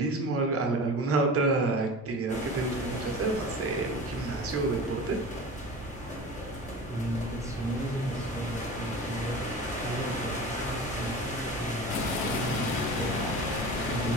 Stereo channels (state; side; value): normal; both; correlation 0.35